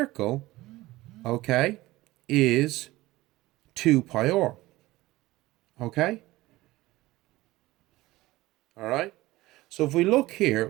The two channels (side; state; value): left; quieter; 18.4 dB